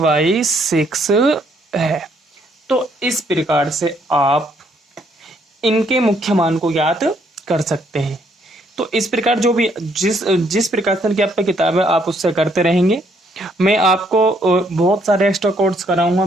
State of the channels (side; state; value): both; normal; correlation 0.69